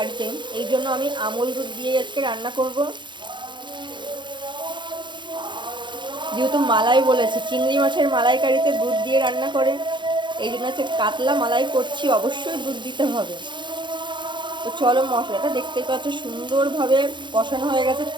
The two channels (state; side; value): late; left; 0.23 ms